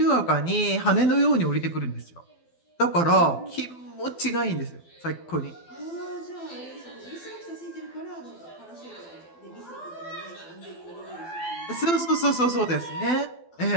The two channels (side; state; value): right; late; 12 ms